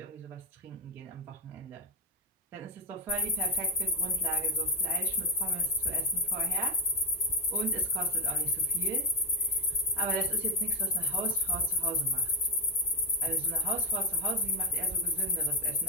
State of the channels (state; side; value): normal; both; correlation 0.03